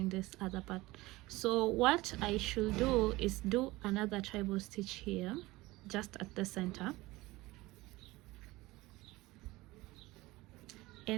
this other part. So what I should do is do another treble stitch here, just at the center.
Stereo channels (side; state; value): left; quieter; 20.0 dB